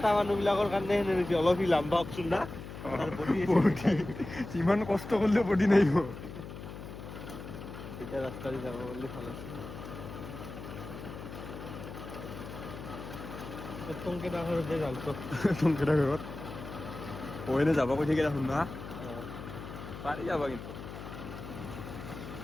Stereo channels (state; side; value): noise; left; hum, 11 dB below the sound